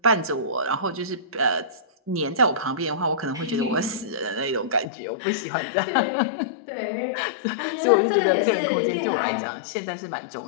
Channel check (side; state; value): right; drops out; at 4.9 s